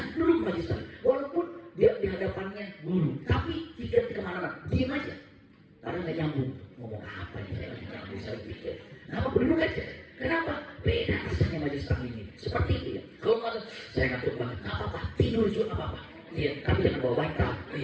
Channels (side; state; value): both; identical; correlation 1.00